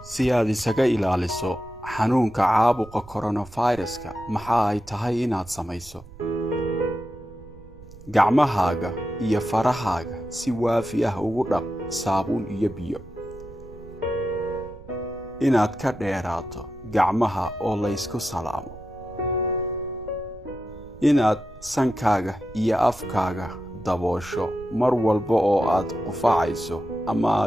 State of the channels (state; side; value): noise; right; rumble, 19 dB below the sound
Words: Si aad isaga ilaaliso xanuunka caabuqa coronavirus-ka, maxaa ay tahay inaad samayso? Gacmahaaga iyo farahaaga si waafi ah ugu dhaq saabuun iyo biyo. Inaad ka dheeraato gacmaha oo la isku salaamo. Inaad sankaaga iyo afkaaga daboosho mar walba oo aad qufacayso ama